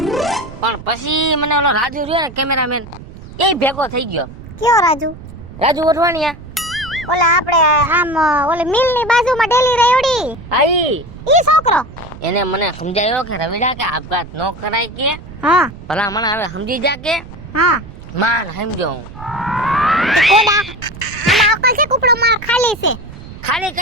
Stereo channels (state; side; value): noise; right; rumble, 15 dB below the sound